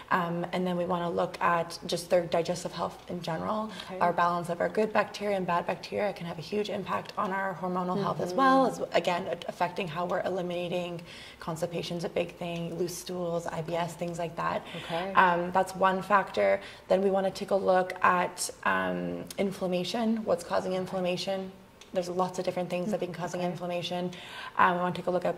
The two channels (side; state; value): both; identical; correlation 1.00